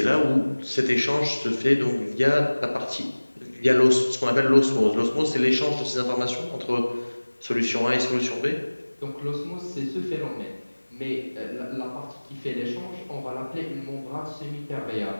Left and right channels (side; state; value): both; inverted; correlation -1.00